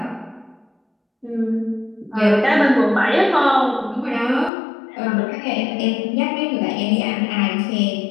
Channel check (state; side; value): drops out; right; at 4.5 s